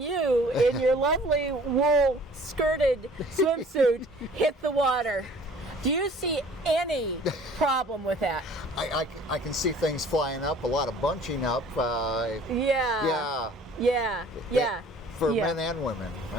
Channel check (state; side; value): normal; both; correlation 0.51